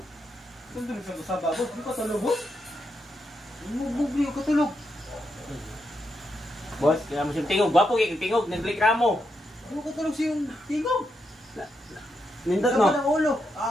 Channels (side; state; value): both; normal; correlation 0.83